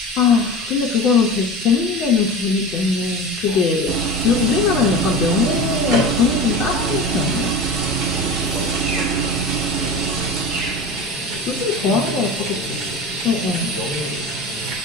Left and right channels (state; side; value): normal; both; correlation 0.31